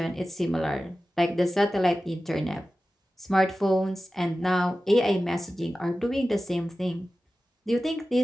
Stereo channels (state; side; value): normal; both; correlation 0.95